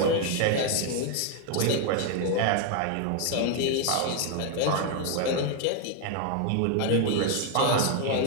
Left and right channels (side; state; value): both; different; correlation 0.00